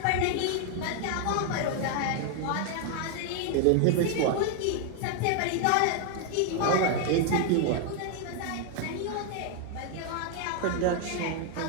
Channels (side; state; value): both; different; correlation 0.00